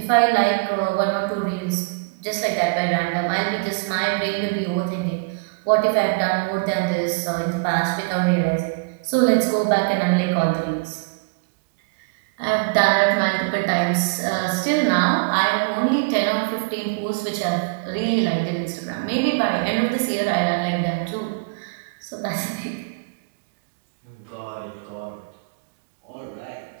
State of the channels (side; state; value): left; quieter; 32.2 dB